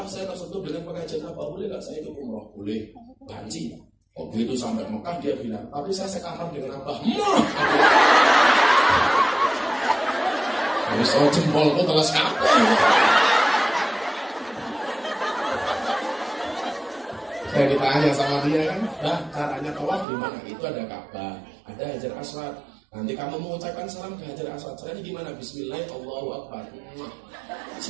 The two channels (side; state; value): left; drops out; at 20.1 s